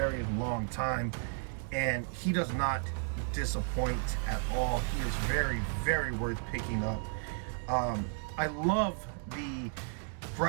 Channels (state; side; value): silent; left; 55 dB below the other